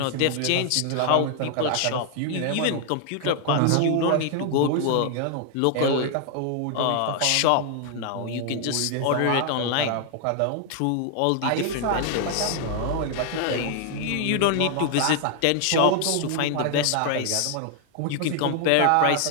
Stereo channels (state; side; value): different; both; correlation 0.00